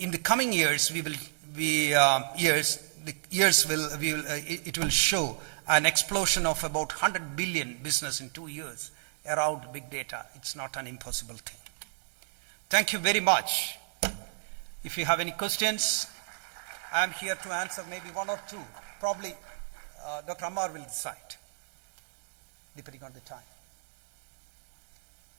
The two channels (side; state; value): left; silent; digital silence